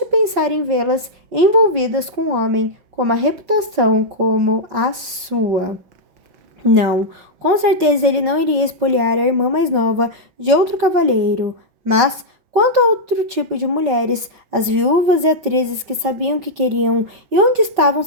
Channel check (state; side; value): late; left; 5.3 ms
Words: pensar em vê-las envolvidas com um homem com uma reputação como a sua. Não, com certeza ele não iria espoliar a irmã mais nova de outro cavalheiro, mas quanto a outro tipo de mulheres, as viúvas e atrizes que sabiam o que queriam e onde estavam